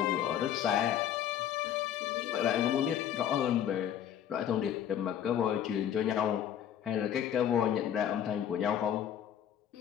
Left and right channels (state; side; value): quieter; right; 9.8 dB